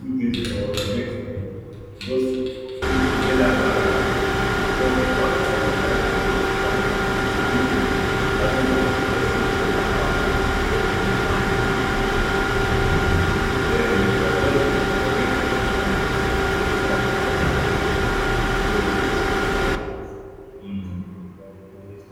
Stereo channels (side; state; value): both; identical; correlation 1.00